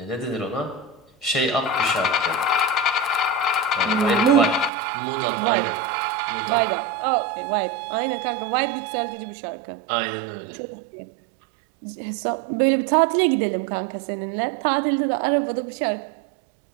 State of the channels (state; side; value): drops out; left; at 4.7 s